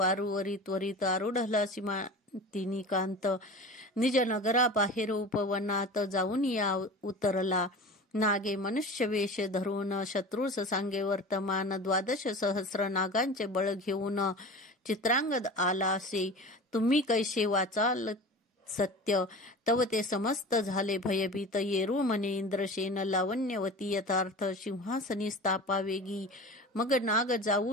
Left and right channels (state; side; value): normal; both; correlation 0.34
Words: त्वरित आरूढला तिनी कांत. निज नगरा बाहेर उपवनात जाऊन या उतरला. नागे मनुष्य वेश धरून शत्रूस सांगे वर्तमान. 12 सहस्र नागांचे बळ घेऊन चित्रांगद आला असे. तुम्ही कैसे वाचाल सत्य, तव ते समस्त झाले भयभीत. येरू म्हणे इंद्रसेन लावण्यवती यथार्थ, सिंहासनी स्थापा वेगी. मग नाग